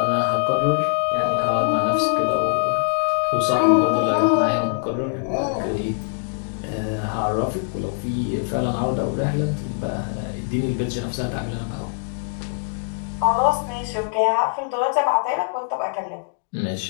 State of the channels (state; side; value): silent; right; 63 dB below the other